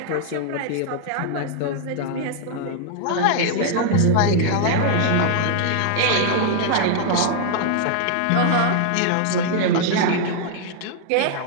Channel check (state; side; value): different; both; correlation 0.00